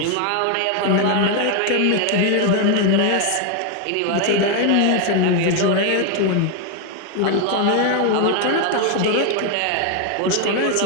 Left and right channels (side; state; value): both; different; correlation 0.01